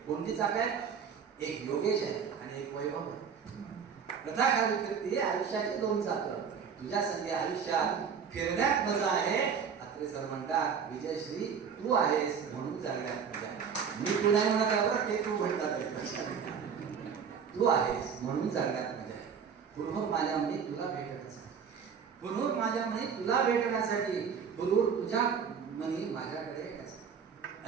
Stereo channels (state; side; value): quieter; left; 6.8 dB